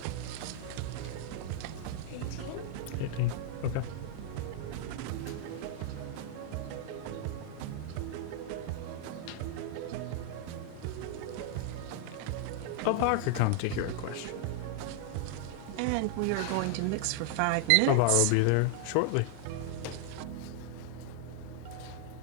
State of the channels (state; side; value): different; both; correlation 0.00